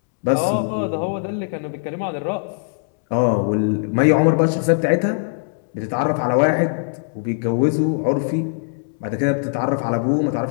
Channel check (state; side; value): silent; right; 65 dB below the other